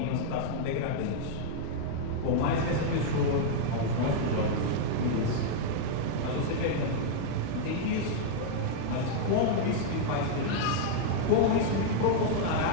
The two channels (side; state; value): both; different; correlation -0.01